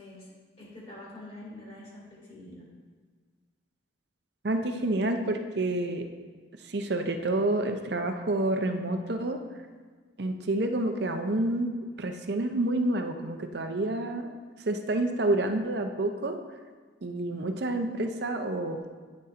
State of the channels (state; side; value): normal; both; correlation 0.37